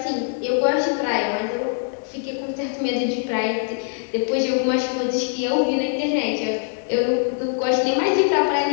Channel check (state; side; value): silent; right; 60 dB below the other